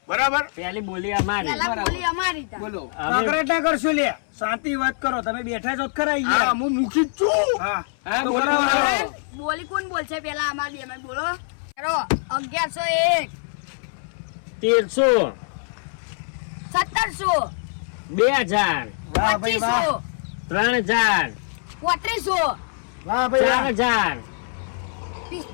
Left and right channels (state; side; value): silent; right; 59 dB below the other